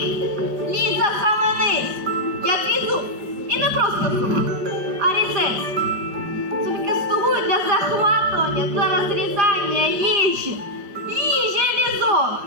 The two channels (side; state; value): left; late; 5.3 ms